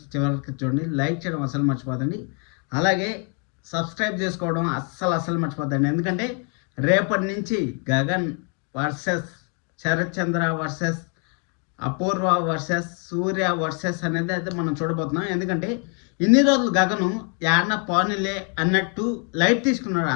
చివరికి చూడండి, లైక్ చేయడం అసలు మర్చిపోదండి. అలాగే సబ్స్క్రైబ్ చేసుకోవడం అస్సలు మర్చిపోద్దండి. ఎందుకంటే రేపటి నుంచి గగన్ వర్సెస్ శరత్ చంద్ర వర్సెస్ అపూర్వ వర్సెస్ సూర్య వర్సెస్ అనేది అయితే మనం చూడబోతున్నాం. ఎందుకంటే ఇన్ని రోజులు గగను యాడ్న పోనీలే అన్నట్టు లైట్ తీసుకున్నాడు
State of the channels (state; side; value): quieter; right; 37.6 dB